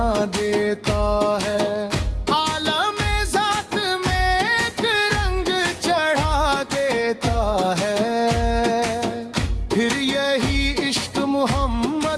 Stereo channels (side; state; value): both; identical; correlation 1.00